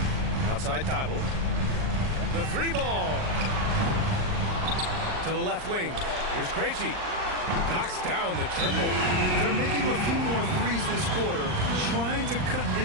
Outside Thibault. The three ball. To the left wing. Here's Krejci. Knocks down the triple. They're making a few more threes this quarter, trying to cut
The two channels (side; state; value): left; late; 39 ms